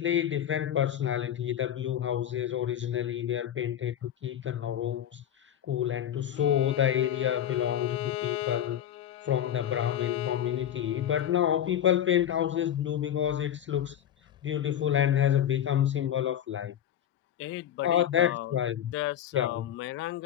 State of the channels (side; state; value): right; quieter; 10.4 dB